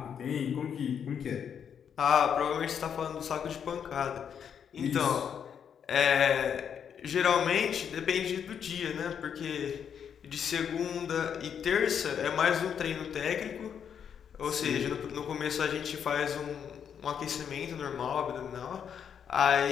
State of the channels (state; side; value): quieter; right; 7.9 dB